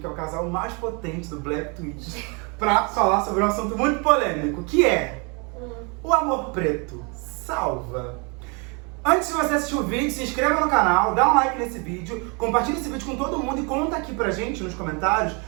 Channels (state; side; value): quieter; left; 32.4 dB